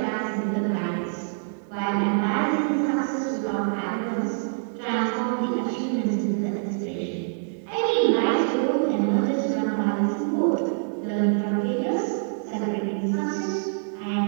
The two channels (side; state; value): left; silent; digital silence